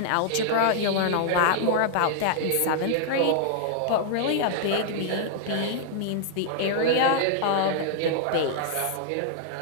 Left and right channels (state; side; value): different; both; correlation -0.01